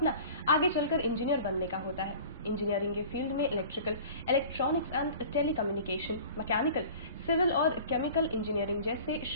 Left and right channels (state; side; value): inverted; both; correlation -0.42